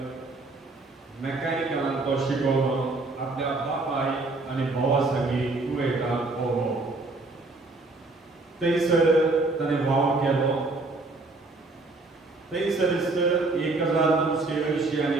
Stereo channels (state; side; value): quieter; left; 3.3 dB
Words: मेकॅनिकलांत तो शिकोवन आपल्या बापाय आनी भावा सगळीं कुवेटांत पावलो. थंयसर ताणें वाव केलो. थंयसरच